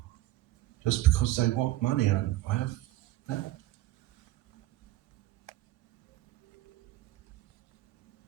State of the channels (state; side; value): quieter; left; 15.9 dB